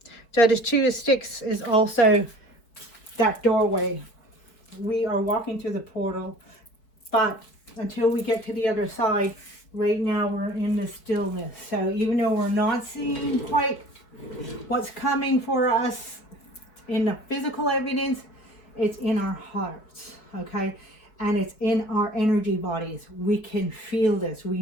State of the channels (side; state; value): right; late; 4.9 ms